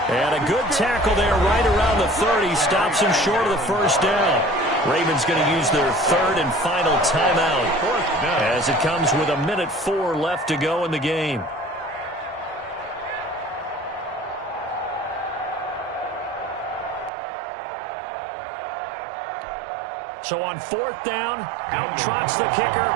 And a good tackle there right around the 30. Stops him short of the first down. Ravens going to use their 3rd and final timeout as it comes with 1:04 left to go in the game. So on 4th down, out trots the kicker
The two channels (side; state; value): left; drops out; at 17.1 s